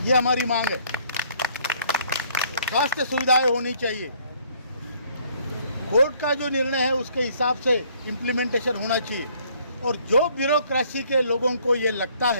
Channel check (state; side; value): inverted; both; correlation -0.62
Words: ये हमारी मांग है। स्वास्थ्य सुविधाएं होनी चाहिए। कोर्ट का जो निर्णय है उसके हिसाब से इम्प्लीमेंटेशन होना चाहिए। और जो ब्यूरोक्रेसी के लोगों को ये लगता